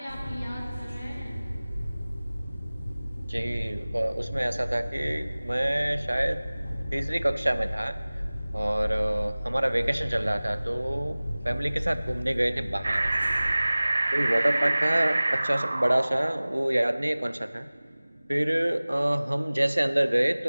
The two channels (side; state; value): both; inverted; correlation -0.99